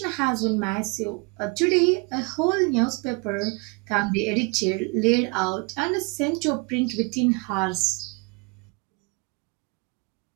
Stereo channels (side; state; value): left; quieter; 29.7 dB